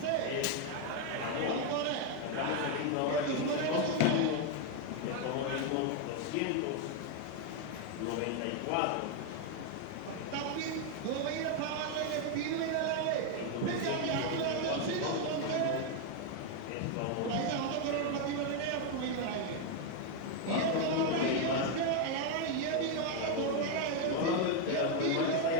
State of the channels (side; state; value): both; different; correlation 0.01